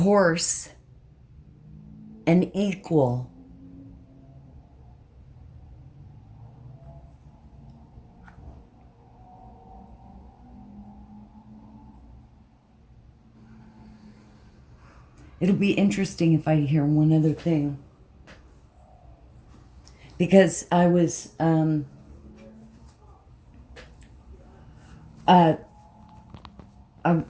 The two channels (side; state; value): both; identical; correlation 1.00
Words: and equal. It'll be interesting if I hear one other thing. because I was,